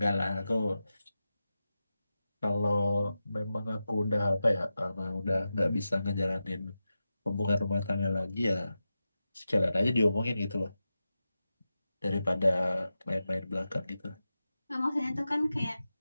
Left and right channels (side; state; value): both; inverted; correlation -0.92